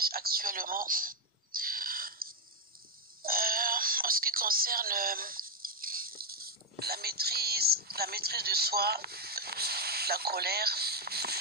actuellement en ce qui concerne la maîtrise de soi, la colère.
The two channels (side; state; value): both; normal; correlation 0.04